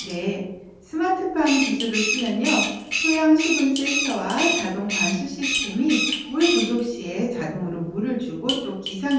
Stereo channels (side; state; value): both; identical; correlation 1.00